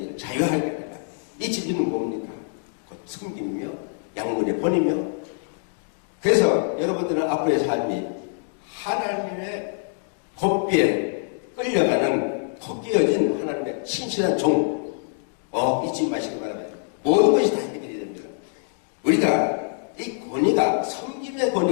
자유하게 하리라. 이 진리는 뭡니까? 곧 섬김이며 양문의 본이며. 그래서 여러분들은 앞으로의 삶이 하나님의 곱비에 끌려가는 헛기어진 하나님의 신실한 종 잊지 마시기 바랍니다. 모든 것이 다 해결이 됩니다. 우리가 이 권위가 섬김의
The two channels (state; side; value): silent; right; digital silence